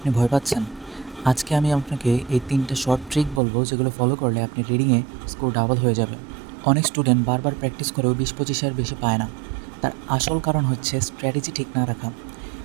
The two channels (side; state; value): left; drops out; at 3.4 s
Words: ভয় পাচ্ছেন? আজকে আমি আপনাকে এই ৩টা শর্ট ট্রিক বলবো, যেগুলো ফলো করলে আপনি রিডিংয়ে স্কোর ডাবল হয়ে যাবে। অনেক স্টুডেন্ট বারবার প্র্যাকটিস করেও ২০-২৫ বেশি পায় না। তার আসল কারণ হচ্ছে স্ট্র্যাটেজি ঠিক না রাখা।